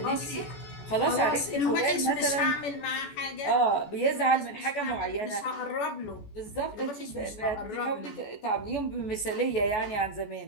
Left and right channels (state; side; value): late; right; 14 ms